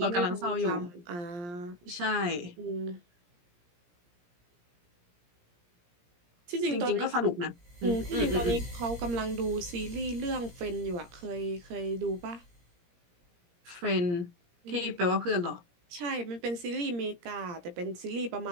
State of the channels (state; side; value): late; left; 17 ms